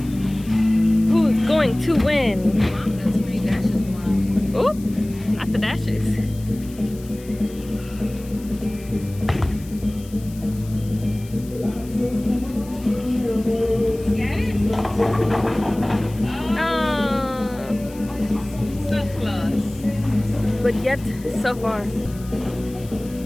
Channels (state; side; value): noise; left; hiss, 21 dB below the sound